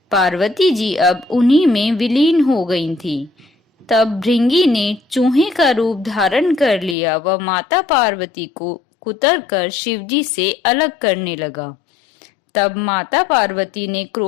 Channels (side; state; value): right; drops out; at 7.0 s